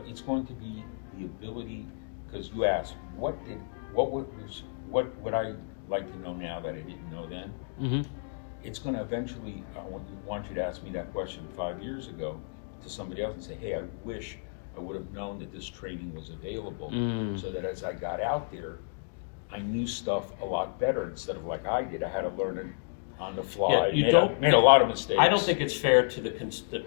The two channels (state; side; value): silent; right; digital silence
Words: it's going to be the ability, because you asked, what would I like to know now that I didn't know then? It's going to eventually, I want you to ask me that question 5 years ago to somebody else and say, hey, I wish I would have known that this training was available, so that as I got out there, I knew stuff a lot better instead of like I did. I had to learn it on the fly. Made a lot of mistakes. I don't think it's fair to